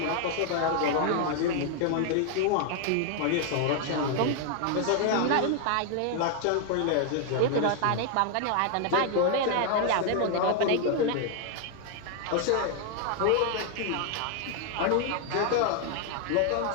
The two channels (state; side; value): different; both; correlation 0.00